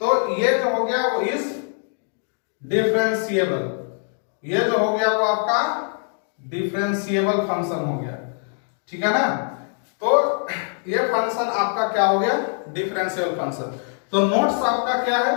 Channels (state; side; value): silent; right; 57 dB below the other